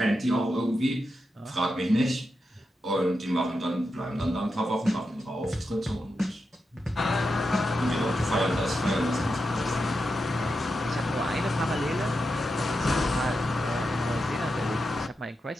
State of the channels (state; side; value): normal; both; correlation 0.88